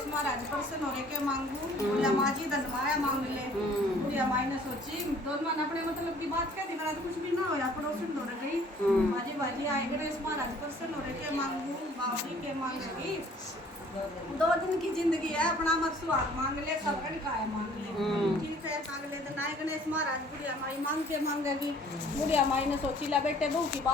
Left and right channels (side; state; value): both; normal; correlation 0.55